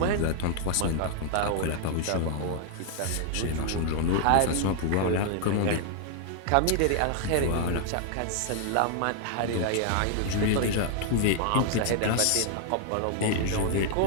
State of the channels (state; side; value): different; both; correlation 0.00